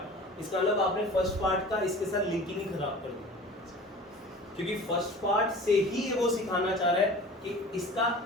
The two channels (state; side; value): normal; both; correlation 0.41